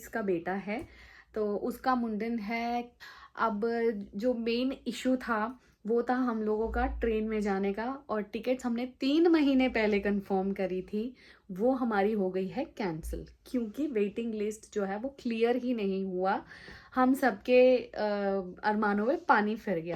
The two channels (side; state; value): both; identical; correlation 1.00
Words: का बेटा है, तो उसका मुंडन है। अब जो मेन इशू था वो था हम लोगों का ट्रेन में जाने का, और टिकट्स हमने 3 महीने पहले कंफर्म करी थी, वो हमारी हो गई है कैंसिल क्योंकि वेटिंग लिस्ट जो है वो क्लियर ही नहीं हुआ। हम सबके अरमानों में पानी फिर